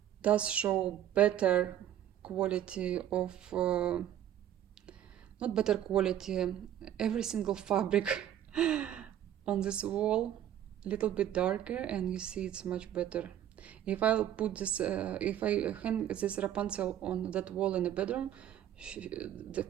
does show better quality of, not better quality, every single fabric on this wall, a little bit darker, and you see it's much better. If I'll put this, if I hang this Rapunzel on that wall in the bedroom, the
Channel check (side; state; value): left; quieter; 11.1 dB